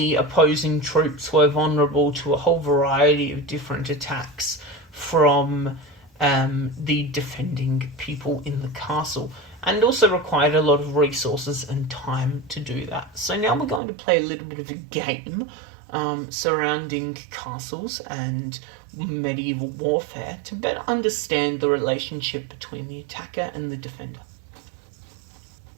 opposing troops were vulnerable to a whole variety of different attacks from the defending people in the castle, and also required a lot of resources and time to do that. So now we're going to play a little bit of a game surrounding castles and medieval warfare to better understand the relationship between the attacker and the defender.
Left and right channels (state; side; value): drops out; left; at 13.8 s